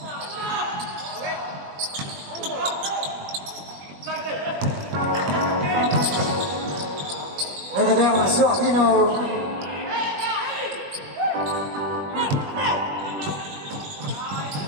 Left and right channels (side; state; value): left; late; 21 ms